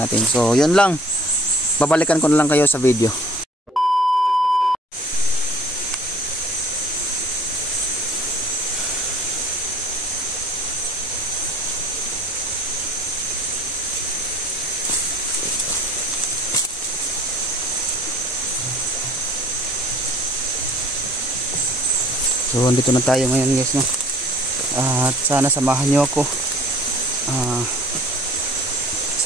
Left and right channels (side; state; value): both; normal; correlation 0.52